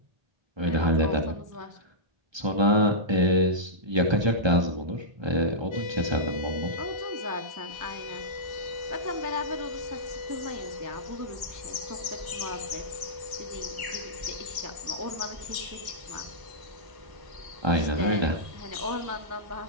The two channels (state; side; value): late; left; 1.3 ms